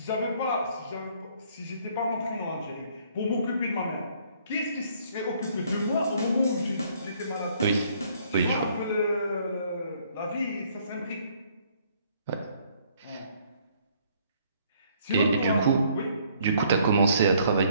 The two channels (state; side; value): inverted; both; correlation -0.64